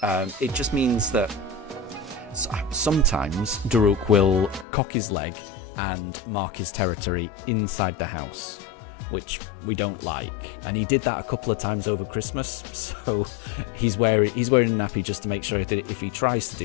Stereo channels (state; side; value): drops out; right; at 4.7 s